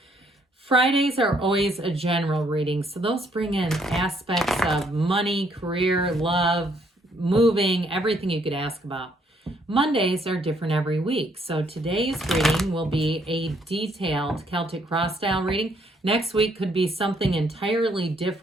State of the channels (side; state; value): both; normal; correlation 0.69